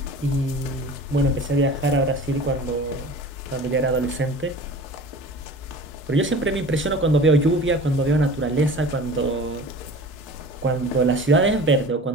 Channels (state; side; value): normal; both; correlation 0.40